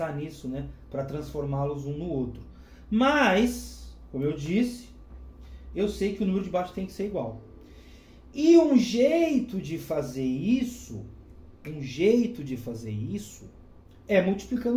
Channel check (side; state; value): both; identical; correlation 1.00